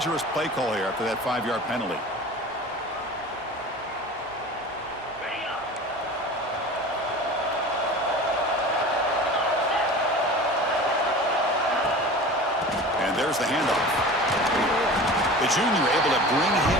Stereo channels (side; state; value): both; normal; correlation 0.37